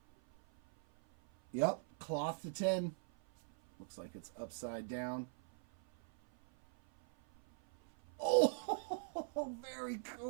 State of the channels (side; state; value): left; silent; 50 dB below the other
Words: Yep, cloth to 10. Looks like it's upside down. Oh, very